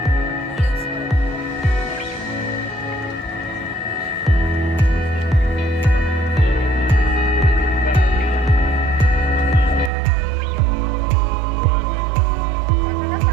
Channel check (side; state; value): left; drops out; at 9.9 s